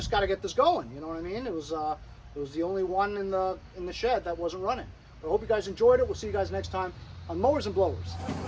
got to get this going. You know what I mean? It was the only one in the shed that wasn't running. But I hope you guys enjoyed it. We'll see you guys next time on Mowers and Blowers.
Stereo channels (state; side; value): identical; both; correlation 1.00